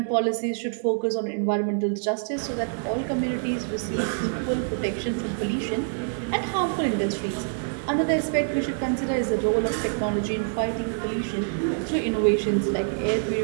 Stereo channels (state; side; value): silent; left; digital silence